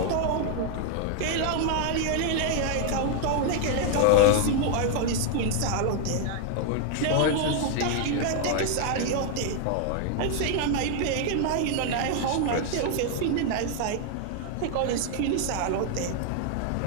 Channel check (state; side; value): different; both; correlation 0.00